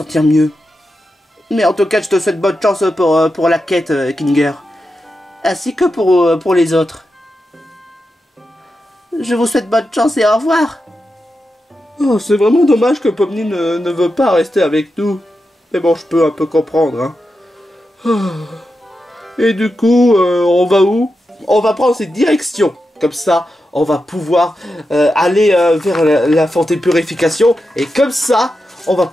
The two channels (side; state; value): both; normal; correlation 0.89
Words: mieux. Mais en tout cas, je te souhaite bonne chance pour la quête, Kinger. Ainsi que pour les autres. Je vous souhaite bonne chance et au revoir. Oh, c'est vraiment dommage que Pomni ne veut pas rester avec nous. Mais bon, je peux un peu comprendre, hein. Et du coup, on va où? On va prendre cette direction. Comme ça, on va pouvoir aller vers la fontaine purification. Et comme ça, on va